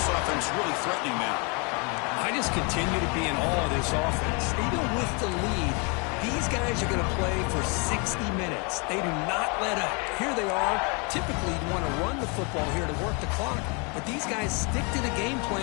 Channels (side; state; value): right; quieter; 32.9 dB